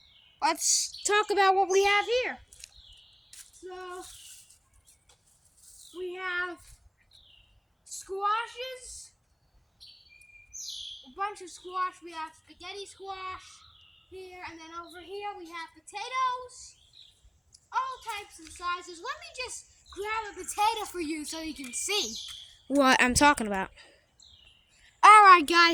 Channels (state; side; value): identical; both; correlation 1.00